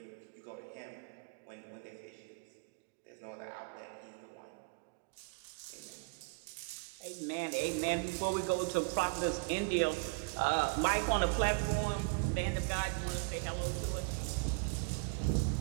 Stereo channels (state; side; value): quieter; left; 32.6 dB